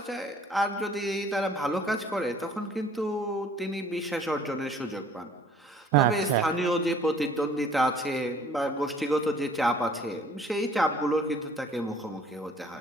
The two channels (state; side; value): normal; both; correlation 0.55